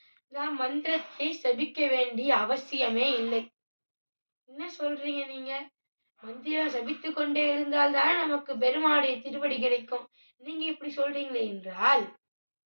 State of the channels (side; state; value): both; inverted; correlation -1.00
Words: நாம் மந்திரத்தை செபிக்க வேண்டிய அவசியமே இல்லை. என்ன சொல்றீங்க நீங்க? மந்திரம் செபித்து கொண்டே இருந்தால் தான் நமக்கு பெருமாளுடைய திருவடி கிடைக்கும். நீங்க இப்படி சொல்றீங்களே என்றால்